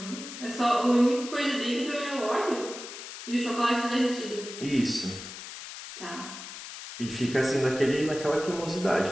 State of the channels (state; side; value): noise; left; hiss, 11 dB below the sound